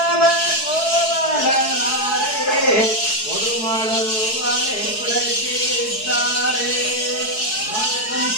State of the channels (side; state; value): right; late; 4.7 ms